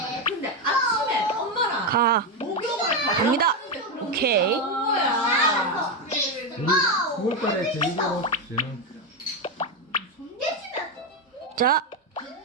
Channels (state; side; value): normal; both; correlation 0.08